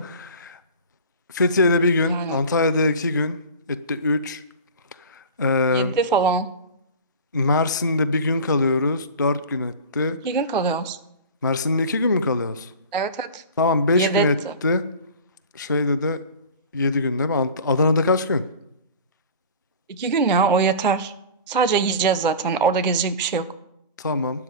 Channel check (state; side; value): inverted; both; correlation -0.36